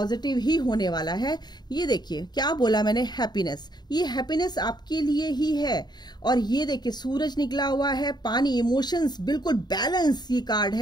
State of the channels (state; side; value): late; right; 0.20 ms